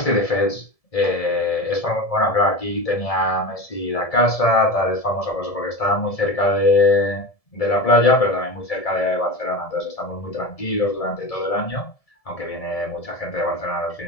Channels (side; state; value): right; late; 1.7 ms